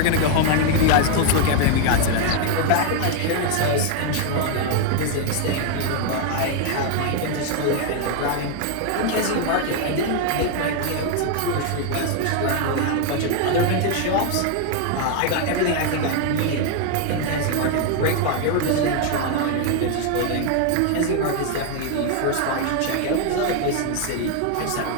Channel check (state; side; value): different; both; correlation 0.00